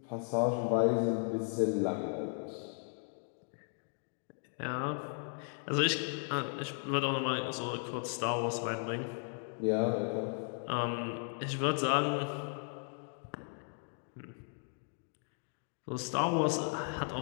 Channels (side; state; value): right; silent; 54 dB below the other